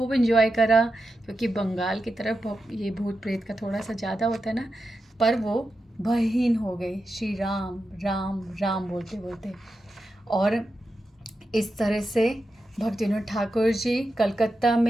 एंजॉय करा, क्योंकि बंगाल की तरफ ये भूत प्रेत का थोड़ा सा ज़्यादा होता है ना, पर वो भयहीन हो गए श्री राम राम राम बोलते बोलते। और इस तरह से भक्तिविनोद ठाकुर जी कलकत्ता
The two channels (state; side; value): normal; both; correlation 0.89